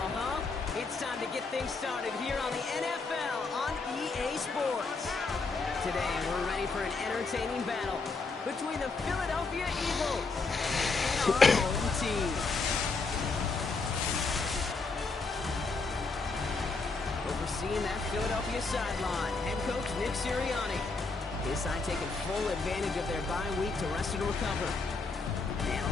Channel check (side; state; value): right; quieter; 4.0 dB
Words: huh? It's time to get things started here on the NFL on EA Sports. Today, we're ready for an entertaining battle between the Philadelphia Eagles and our home team. Overseeing that Philadelphia sideline, head coach Nick Sirianni. His side taking full advantage of their bye week to rest and recover. And